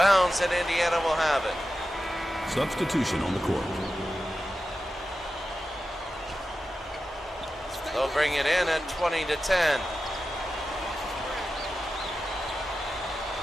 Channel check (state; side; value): normal; both; correlation 0.92